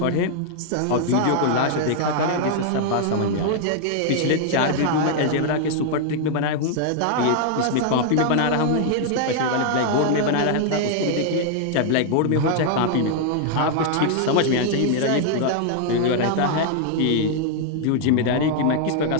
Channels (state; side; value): different; both; correlation 0.00